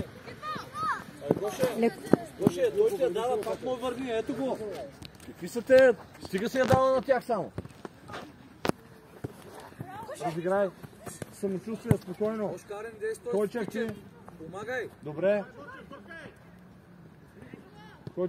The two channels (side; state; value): both; identical; correlation 1.00